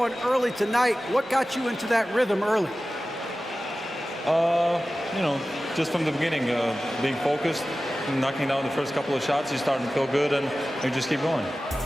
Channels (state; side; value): normal; both; correlation 0.95